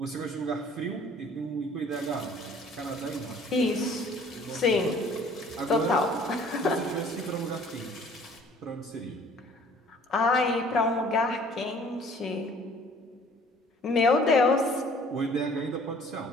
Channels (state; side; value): normal; both; correlation 0.53